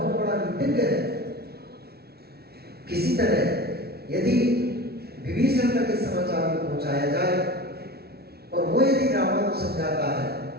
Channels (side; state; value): left; late; 0.46 ms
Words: बड़ा नीतिज्ञ है। किसी तरह यदि विभीषण तक इस समाचार को पहुंचाया जाए और वो यदि रावण को समझाता है